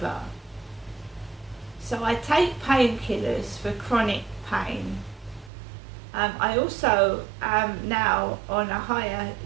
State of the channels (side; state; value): left; drops out; at 5.5 s